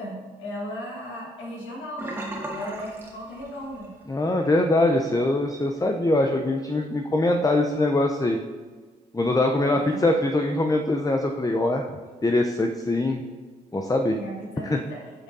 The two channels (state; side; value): normal; both; correlation 0.75